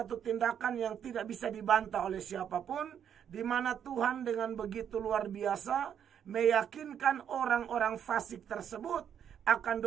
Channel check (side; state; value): left; quieter; 8.8 dB